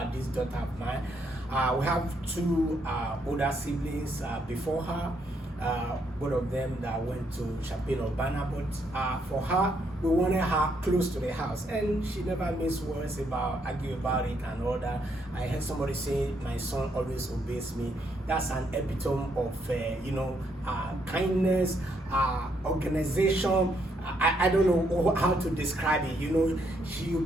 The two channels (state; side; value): normal; both; correlation 0.74